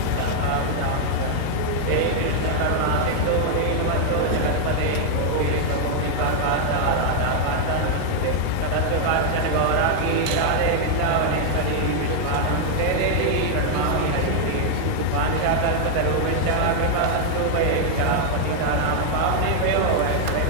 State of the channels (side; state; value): both; different; correlation 0.00